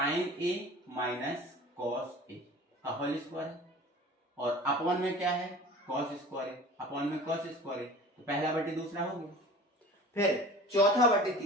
A minus cos A whole square है, और अपॉन में क्या है कॉस स्क्वायर है, अपॉन में कॉस स्क्वायर है, तो पहला बटे दूसरा हो गया। फिर चौथा बटे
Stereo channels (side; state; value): both; normal; correlation 0.41